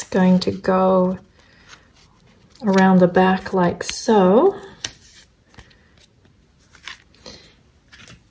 going to go around the back like so.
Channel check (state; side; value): identical; both; correlation 1.00